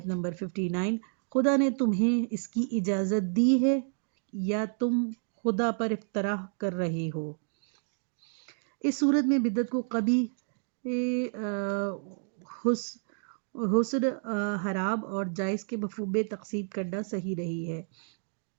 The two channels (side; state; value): left; silent; digital silence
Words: نمبر 59، خدا نے تمہیں اس کی اجازت دی ہے یا تم خدا پر افترا کر رہے ہو۔ اس صورت میں بدعت کو قبیح، حسن، حرام اور جائز کے مفہوم میں تقسیم کرنا صحیح نہیں ہے۔